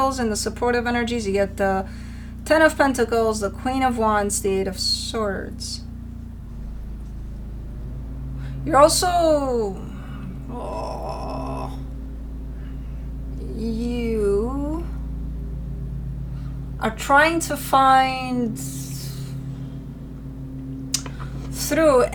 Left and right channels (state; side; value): identical; both; correlation 1.00